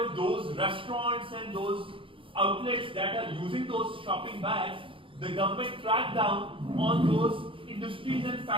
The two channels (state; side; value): late; left; 0.25 ms